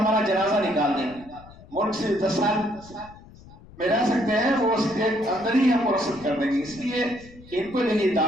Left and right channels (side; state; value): left; noise; rumble, 21 dB below the sound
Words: جنازہ نکال دیں گے. ملک سے 10 سال میں رہ سکتے ہیں، وہ اس کے اندر ہی ہم کو رخصت کر دیں گے. اس لیے ان کو جو یہ